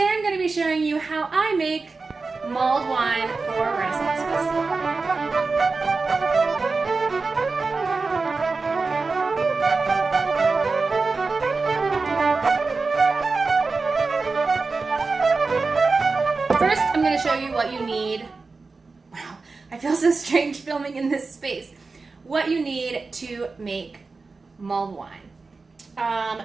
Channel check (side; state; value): left; quieter; 4.1 dB